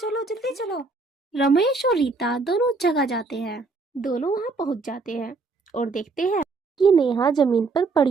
जल्दी चलो। रमेश और रीता दोनों उस जगह जाते हैं। दोनों वहां पहुंच जाते हैं और देखते हैं कि नेहा जमीन पर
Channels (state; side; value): quieter; left; 3.9 dB